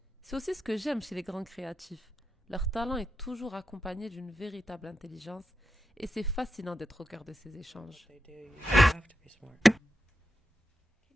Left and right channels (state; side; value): normal; both; correlation 0.87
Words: C'est aussi ce que j'aime chez les grands créatifs. Leur talent est toujours accompagné d'une véritable intelligence et c'est fascinant d'être au cœur de ces échanges. They do. You have to be smart.